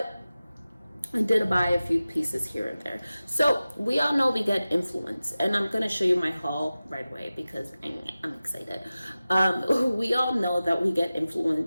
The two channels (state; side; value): inverted; both; correlation -0.96